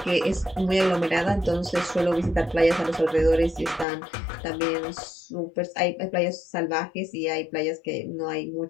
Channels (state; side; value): drops out; right; at 3.9 s